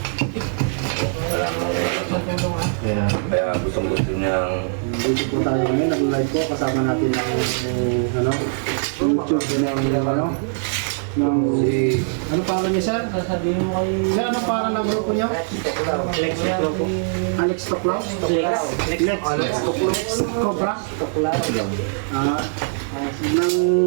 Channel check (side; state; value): left; silent; digital silence